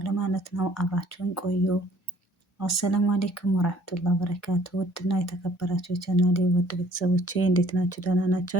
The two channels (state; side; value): normal; both; correlation 0.58